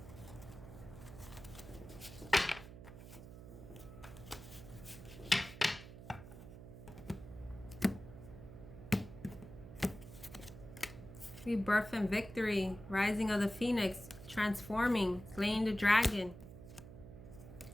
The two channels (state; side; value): noise; right; hum, 14 dB below the sound